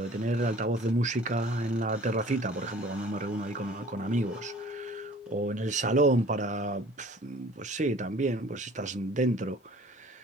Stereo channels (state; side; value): normal; both; correlation 0.50